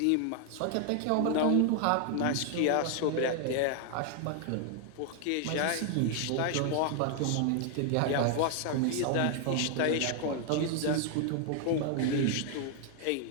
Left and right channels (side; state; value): both; different; correlation 0.00